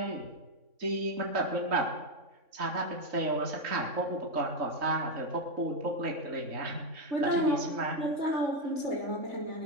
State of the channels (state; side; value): late; left; 3.6 ms